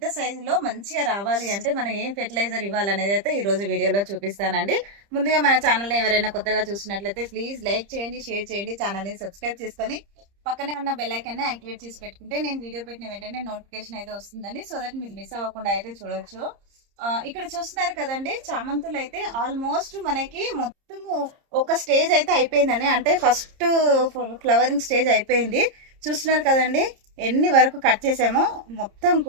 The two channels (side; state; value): left; late; 30 ms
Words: సైజులో మంచిగా రావాలి అంటే మనం ఏం ఫెర్టిలైజర్ ఇవ్వాలనేది అయితే ఈ రోజు వీడియోలో చూపిస్తానండి. ముందుగా మన ఛానల్ ఎవరైనా కొత్తగా చూసినట్లయితే ప్లీజ్ లైక్ చేయండి, షేర్ చేయండి, ఛానల్ ని సబ్స్క్రైబ్ చేసుకొని పక్కనే ఉన్న బెల్ ఐకాన్ ని యాక్టివేట్ చేసి పెట్టుకుంటే నేను వీడియో పెట్టిన వెంటనే నోటిఫికేషన్ అయితే వస్తుందండి. సో దట్ మీరు మిస్ అవ్వకుండా అయితే చూడొచ్చు. ఇక్కడ చూస్తున్నారు కదండి, చామంతులు అయితే ఆల్మోస్ట్ మనకి మొత్తము ఒక స్టేజ్ అయితే అయిపోయిందండి. అంటే ఫస్ట్ ఫ్లవరింగ్ స్టేజ్ అయిపోయింది. చూస్తున్నారు కదండి ఎన్ని వరకు కట్ చేసామో. మొత్తం